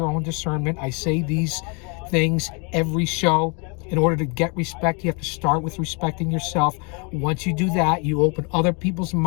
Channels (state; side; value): quieter; right; 33.2 dB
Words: own discernment. I say these things every show. In order to get respect, you have to start with respecting yourself. Once you do that, you open other people's